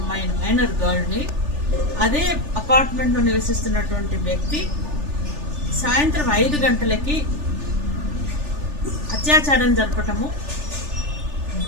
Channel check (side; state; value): left; late; 3.4 ms